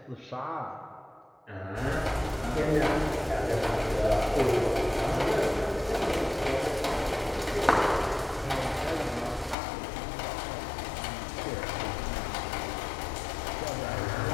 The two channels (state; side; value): drops out; right; at 9.6 s